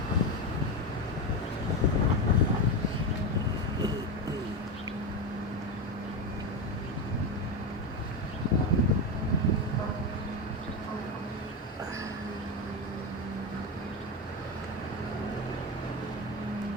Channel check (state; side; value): normal; both; correlation 0.15